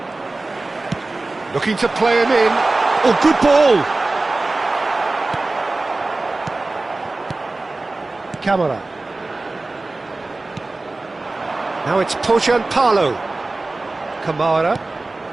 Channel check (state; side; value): quieter; left; 3.2 dB